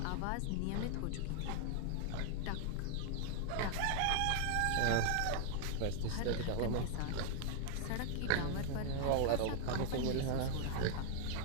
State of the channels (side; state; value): both; different; correlation 0.00